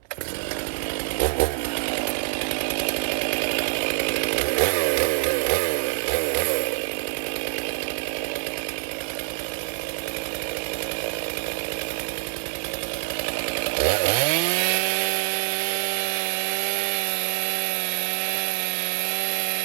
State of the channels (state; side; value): silent; left; 61 dB below the other